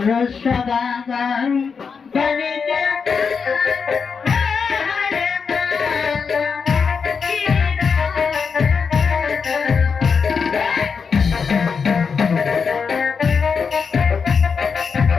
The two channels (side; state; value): right; quieter; 5.7 dB